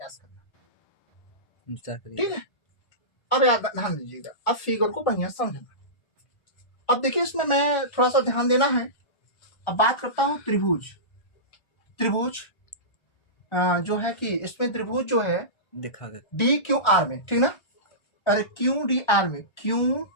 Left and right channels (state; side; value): late; right; 1.4 ms